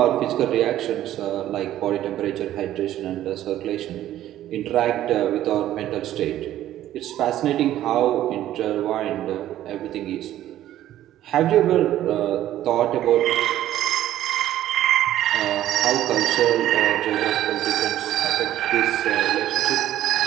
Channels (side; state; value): left; quieter; 12.9 dB